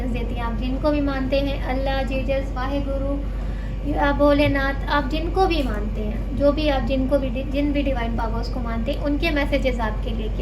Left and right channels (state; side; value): identical; both; correlation 1.00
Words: देती है। आप जिनको भी मानते हैं, अल्लाह, जीसस, वाहेगुरु या भोलेनाथ, आप जिनको भी मानते हैं, जो भी आप जिन भी डिवाइन पावर्स को मानते हैं, उनके मैसेजेस आपके लिए